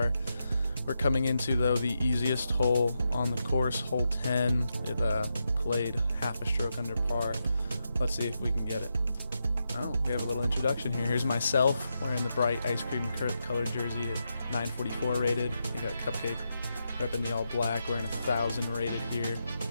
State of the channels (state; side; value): inverted; both; correlation -0.85